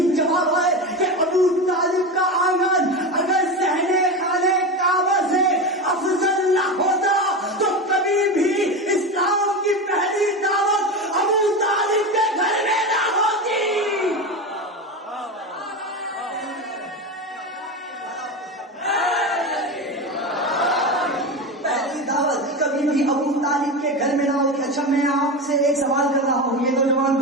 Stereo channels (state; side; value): normal; both; correlation 0.21